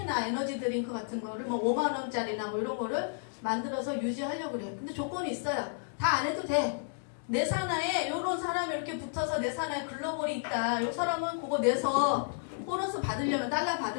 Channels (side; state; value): right; silent; digital silence